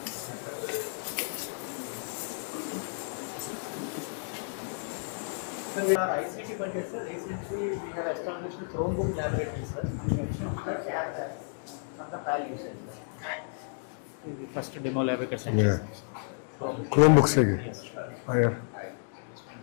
Our ICT budget, sir, recently we have established a Chromebook laboratory, sir, in addition to the tab lab for the PAL usage, sir. The first demo lab we can send. Chrome book से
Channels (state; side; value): silent; right; digital silence